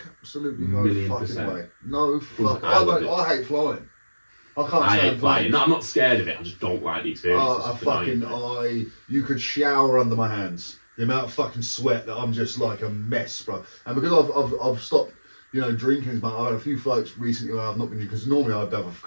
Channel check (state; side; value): inverted; both; correlation -1.00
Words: Absolutely no fucking way. No fucking I hate flying. I can't stand flying. No, I'm not scared of it, I just don't like the experience. You could shower under my hands. The amount of fucking sweat that I'm just like a mess, bro. And because I've stopped, drinking, but I had a few flights recently where I've not been, because normally I'd have a